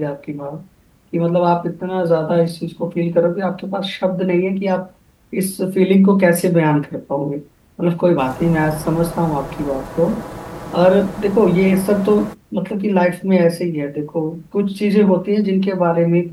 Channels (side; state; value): both; identical; correlation 1.00